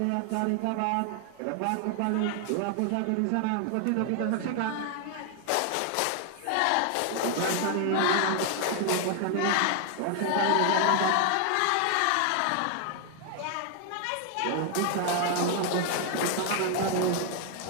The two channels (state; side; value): different; both; correlation 0.00